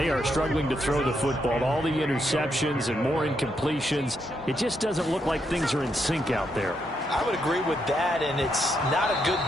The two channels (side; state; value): both; normal; correlation 0.79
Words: are struggling to throw the football. All the interceptions and more incompletions. It just doesn't look like things are in sync out there. I would agree with that, and it's not a good